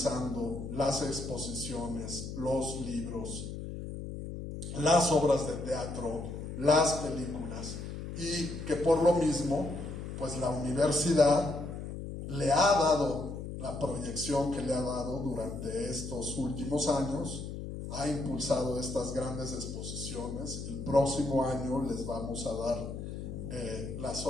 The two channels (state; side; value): noise; left; hum, 7 dB below the sound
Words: las exposiciones, los libros, las obras de teatro, las películas, y que por lo mismo, pues la universidad le ha dado la proyección que le ha dado durante estos últimos años, ha impulsado estas grandes exposiciones. El próximo año les vamos a dar la